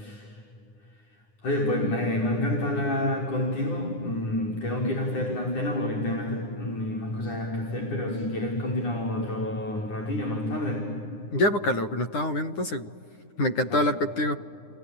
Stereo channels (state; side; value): late; right; 9.8 ms